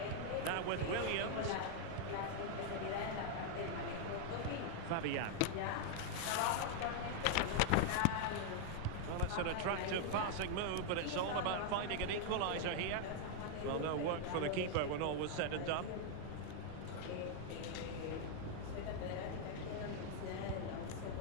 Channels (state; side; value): different; both; correlation 0.00